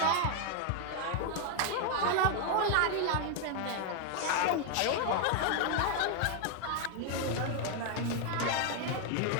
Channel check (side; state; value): both; different; correlation 0.00